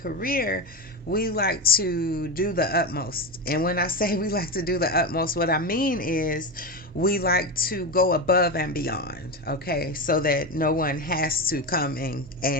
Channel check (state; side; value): normal; both; correlation 0.17